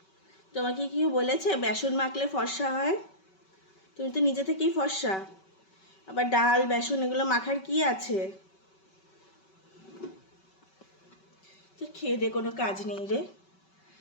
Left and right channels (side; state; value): right; late; 5.3 ms